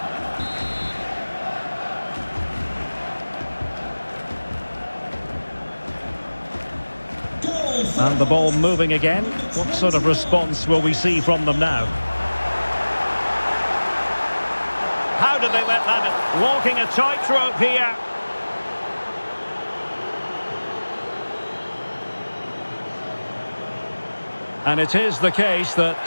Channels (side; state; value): both; inverted; correlation -1.00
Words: And the ball moving again. What sort of response will we see from them now? How did they let that? Walking a tightrope here. And it is the case that